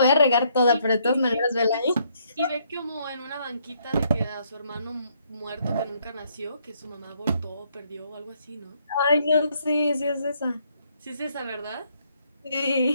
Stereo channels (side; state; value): both; inverted; correlation -0.70